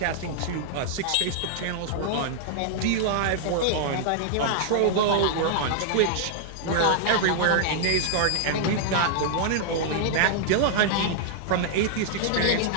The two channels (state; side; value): different; both; correlation -0.01